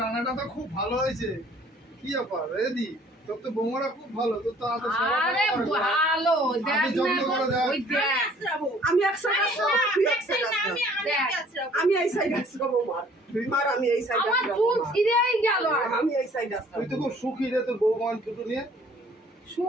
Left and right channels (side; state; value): both; normal; correlation 0.56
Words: রান্নাটা তো খুব ভালো হয়েছে। কি ব্যাপার রেদি? তোর তো বৌমারা খুব ভালো, তোর তো এত সেবা আরে করা হয় না। ভালো, দেখ আমি যত্ন না, করে দেখ। ওই দেখ। আসতে যাবো। আমি এক সাইড আসবো, তুই এক সাইড না, আসবো। আমি আসতে যাবো। আমি এই সাইড আসবো মার, আমি এই সাইড আমার আসবো চুল ছিঁড়েই গেল। আমি এই সাইড আসবো। তুই তো খুব সুখী রে তোর বৌমা দুটো নিয়ে।